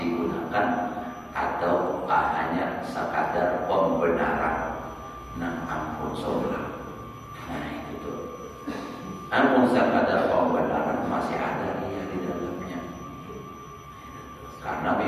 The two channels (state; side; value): identical; both; correlation 1.00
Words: atau hanya sekadar pembenaran? Nah ampun saudara, nah itu tuh, ampun sekadar pembenaran masih ada riya di dalamnya. Karena